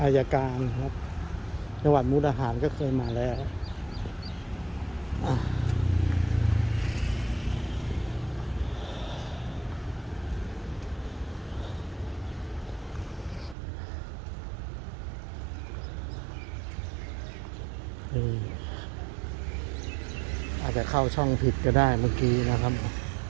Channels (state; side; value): drops out; left; at 13.6 s